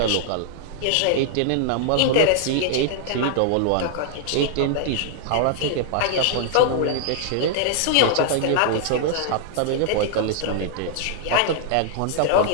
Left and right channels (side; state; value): both; different; correlation -0.01